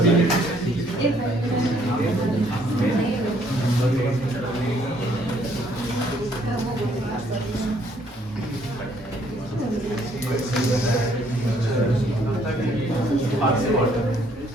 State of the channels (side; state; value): both; normal; correlation 0.65